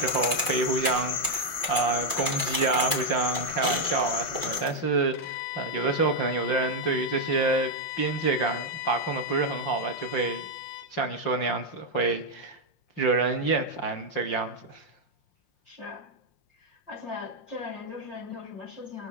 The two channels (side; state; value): right; late; 5.6 ms